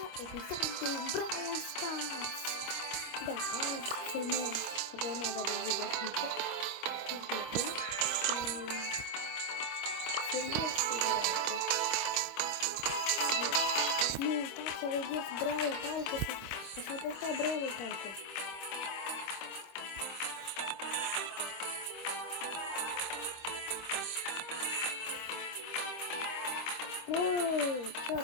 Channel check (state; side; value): late; right; 26 ms